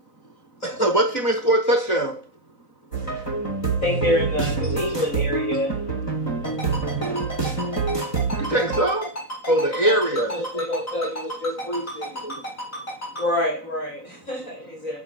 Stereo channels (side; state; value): right; late; 4.0 ms